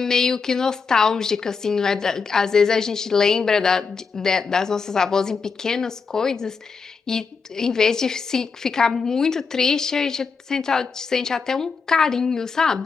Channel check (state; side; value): quieter; right; 5.1 dB